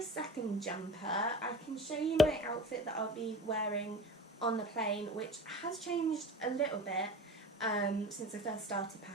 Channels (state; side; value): normal; both; correlation 0.35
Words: jumper. I can show you my outfit that I'll be wearing on the plane, which has changed a little bit since I first started